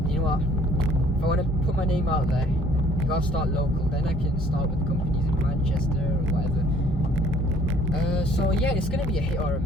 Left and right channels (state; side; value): normal; both; correlation 0.58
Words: you know what, if I want to put my name out there, I gotta start local. Then I can start with companies in Manchester or whatever. So yeah, it's gonna be a hit or a